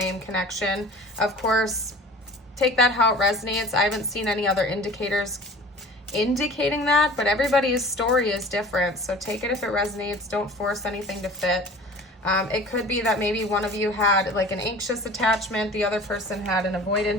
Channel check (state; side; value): normal; both; correlation 0.43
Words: connection. Of course, take that how it resonates. I haven't seen any other indicators indicating that, but everybody's story is different. So take it if it resonates. Don't force anything to fit. It could be that maybe one of you had like an anxious attachment, the other person had an